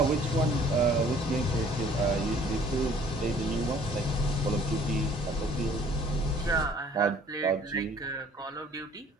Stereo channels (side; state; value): both; normal; correlation 0.55